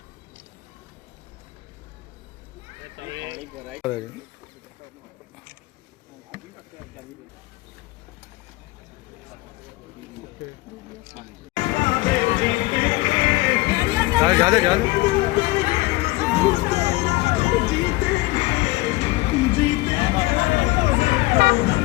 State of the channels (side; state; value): right; quieter; 20.4 dB